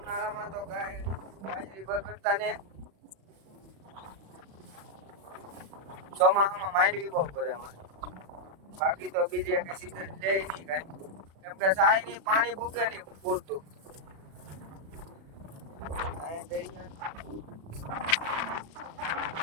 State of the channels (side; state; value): left; late; 36 ms